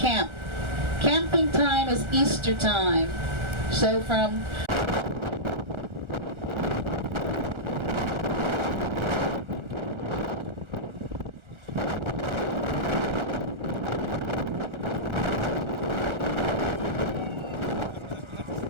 Camping time is Easter time. So from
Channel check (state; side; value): late; left; 1.4 ms